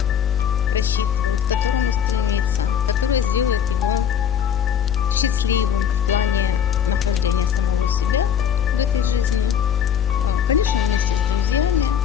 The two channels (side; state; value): right; quieter; 8.5 dB